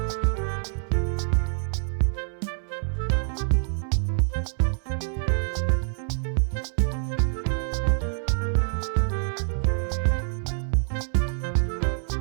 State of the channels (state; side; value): silent; left; 61 dB below the other